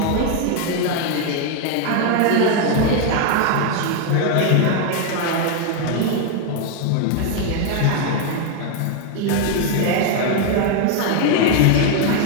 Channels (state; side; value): different; both; correlation 0.01